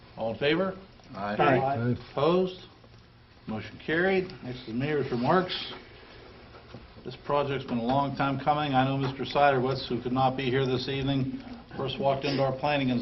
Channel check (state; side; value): identical; both; correlation 1.00